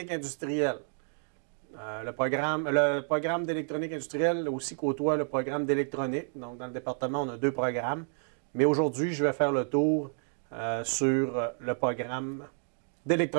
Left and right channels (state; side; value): silent; left; 58 dB below the other